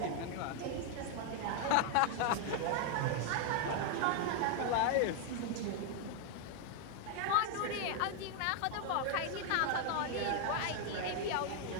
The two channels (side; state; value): both; different; correlation 0.00